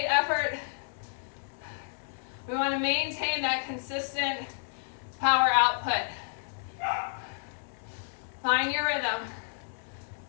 effort. We want to maintain that consistent power output. Find your rhythm.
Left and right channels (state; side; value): silent; right; digital silence